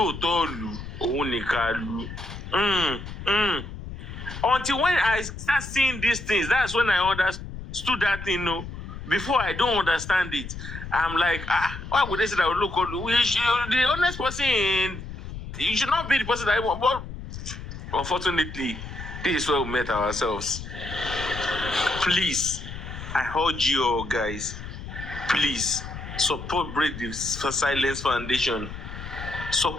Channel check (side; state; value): left; noise; rumble, 10 dB below the sound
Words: òun nìkan lù. Until when I start seeing these things, that's when I understood that thing. No, before I don't understand it. I'm like, why would they say that the honest person? You should not be the person that I want. But unfortunately, this is where we met ourselves. Please, I urge you all guys, please support Break the Silence Foundation.